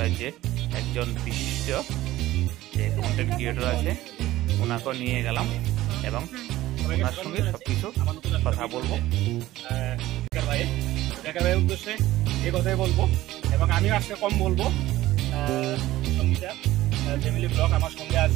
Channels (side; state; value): left; quieter; 15.9 dB